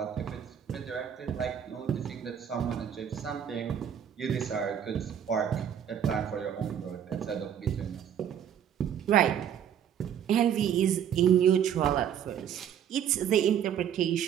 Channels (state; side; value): quieter; left; 9.1 dB